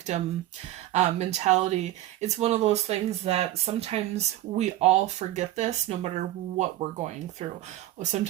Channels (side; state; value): left; quieter; 14.7 dB